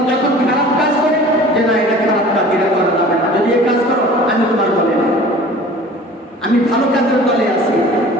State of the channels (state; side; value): normal; both; correlation 0.44